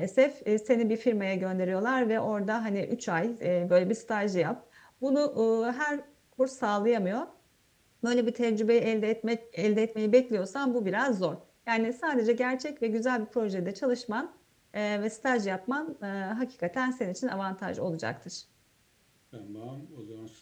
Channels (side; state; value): both; identical; correlation 1.00